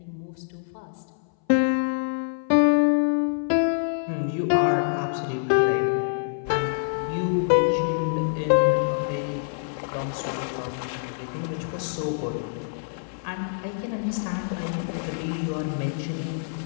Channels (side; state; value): right; silent; 58 dB below the other